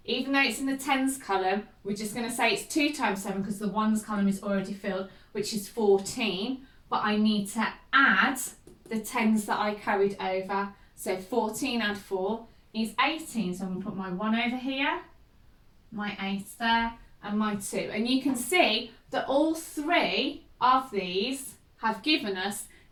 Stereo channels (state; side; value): identical; both; correlation 1.00